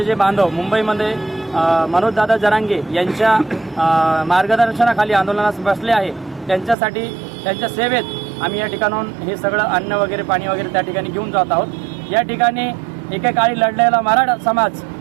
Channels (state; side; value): drops out; left; at 6.8 s